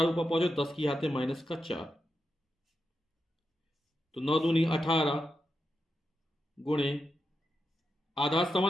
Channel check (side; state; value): both; normal; correlation 0.87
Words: ऊपर पहुंचो 10 की घात -4, तो 9 दूनी 18 गुणे आधा